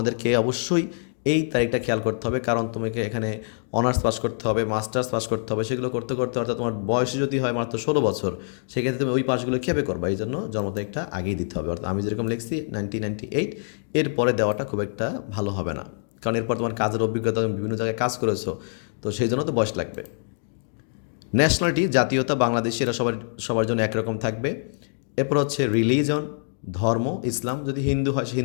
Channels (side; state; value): right; silent; digital silence